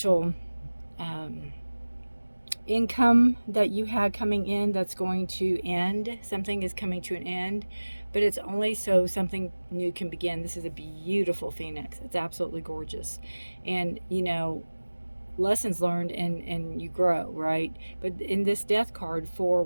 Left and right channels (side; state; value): both; inverted; correlation -1.00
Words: income that you had coming in that's going to end. Something is coming to an end, but it's only so something new can begin. This is a beautiful phoenix. It's absolutely gorgeous. And, you know, lessons learned, and you grow, right? But in this Death card for